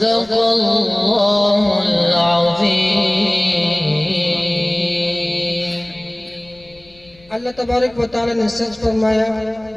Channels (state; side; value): noise; left; rumble, 28 dB below the sound